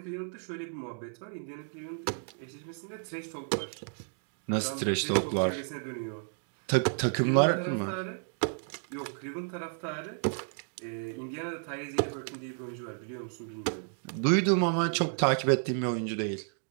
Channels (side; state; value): left; silent; 56 dB below the other